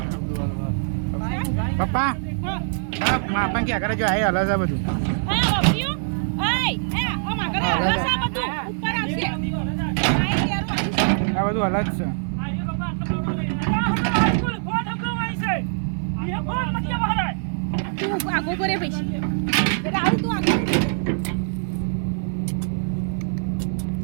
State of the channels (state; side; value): silent; left; digital silence